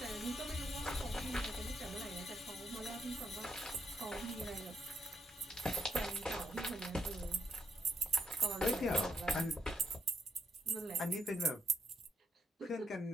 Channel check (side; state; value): both; normal; correlation 0.74